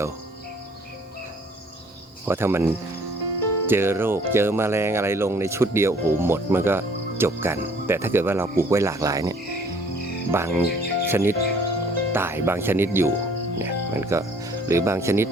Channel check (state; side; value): normal; both; correlation 0.58